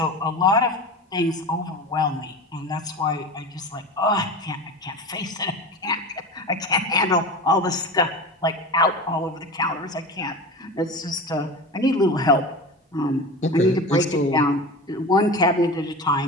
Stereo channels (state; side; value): normal; both; correlation 0.30